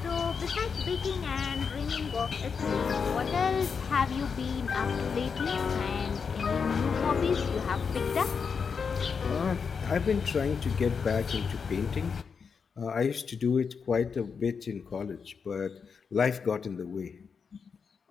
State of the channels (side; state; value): right; quieter; 5.9 dB